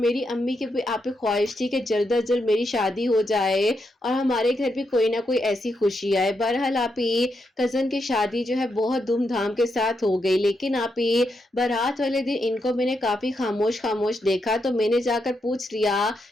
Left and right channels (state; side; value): normal; both; correlation 0.83